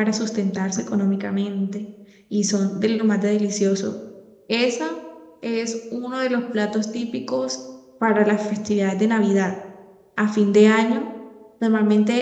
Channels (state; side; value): identical; both; correlation 1.00